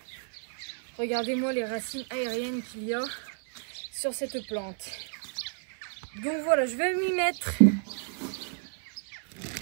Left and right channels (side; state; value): left; silent; 57 dB below the other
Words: Regardez-moi les racines aériennes qu'il y a sur cette plante. Donc voilà, je vais m'y mettre.